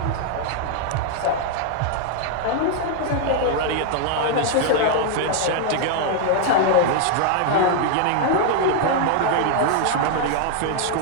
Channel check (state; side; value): different; both; correlation 0.00